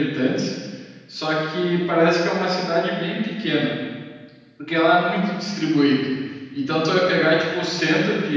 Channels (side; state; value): both; identical; correlation 1.00